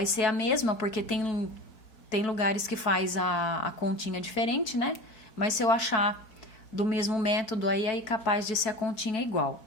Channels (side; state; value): right; late; 4.6 ms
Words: ser a mesma, porque tem lugares que faz a continha diferente, né? Mas se eu achar do mesmo método aí capaz de ser a continha igual,